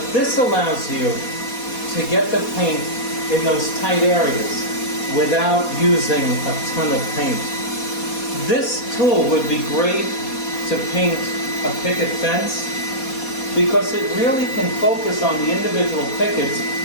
this allows you to get the paint in those tight areas without using a ton of paint. This tool would be great to paint a picket fence because it really can focus on the individual pickets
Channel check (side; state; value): right; late; 4.2 ms